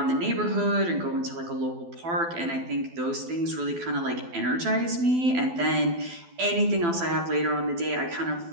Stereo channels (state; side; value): late; left; 12 ms